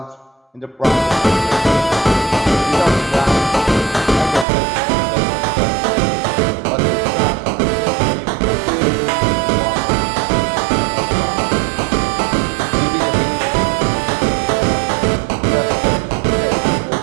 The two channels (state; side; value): drops out; left; at 4.5 s